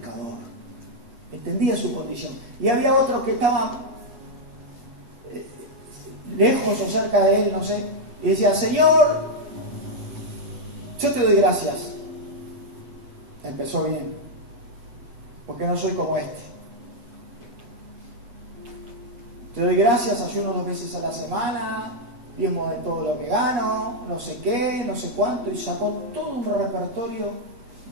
Entendía su condición. Y había otro que estaba lejos o cerca de él, no sé, y decía, Señor, yo te doy gracias. Empezó bien, porque no soy como este. Te doy gracias, ayuno 2 veces a la semana, diezmo de todo lo que gano, no sé qué, no sé cuánto, y sacó todo un repertorio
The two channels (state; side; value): late; left; 8.0 ms